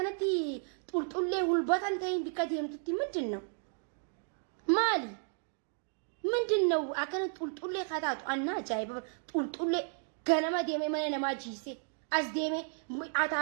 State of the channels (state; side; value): silent; left; 55 dB below the other